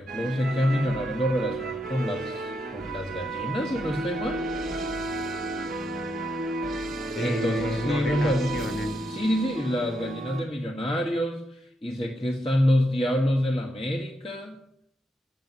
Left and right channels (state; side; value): normal; both; correlation 0.81